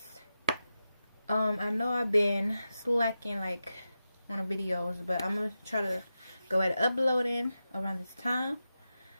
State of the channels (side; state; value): both; inverted; correlation -0.91